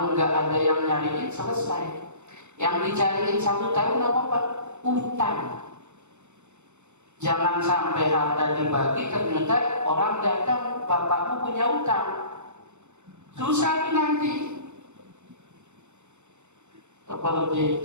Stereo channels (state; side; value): late; left; 0.83 ms